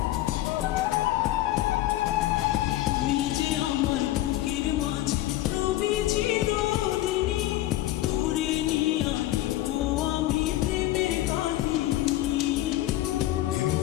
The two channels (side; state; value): right; quieter; 15.1 dB